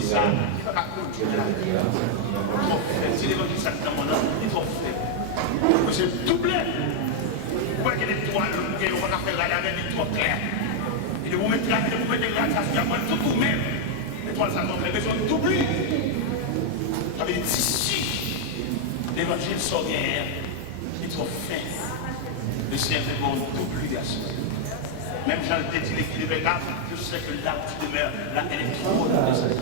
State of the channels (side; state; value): both; different; correlation 0.00